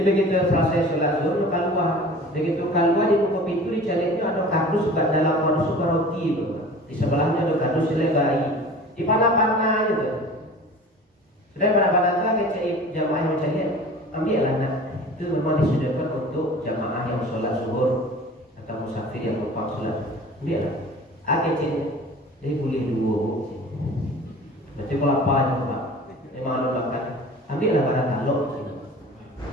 begitu selesai sholat zuhur keluar, begitu keluar di buku pintu di jalannya ada kardus buat dalam masuk roti itu, di sebelahnya ada kardus selebai, di panah-panah gitu. Sudah pada itu kecil jamaah yang mencari ambil anak itu memang disediakan untuk jamaah yang sholat zuhur atau musafir yang lupa sholat ambil kecil jadi boleh 2 berarti kalau apa aja Pak memang ada makan ambil lah pada taluk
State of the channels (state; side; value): normal; both; correlation 0.42